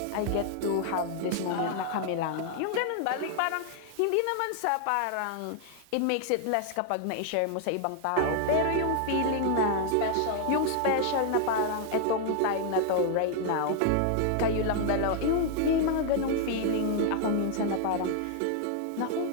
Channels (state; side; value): different; both; correlation 0.00